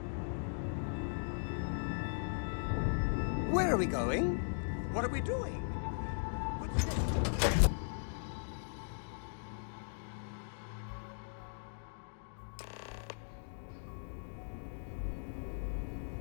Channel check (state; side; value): silent; right; digital silence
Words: Where are we going? What are we doing? What's next?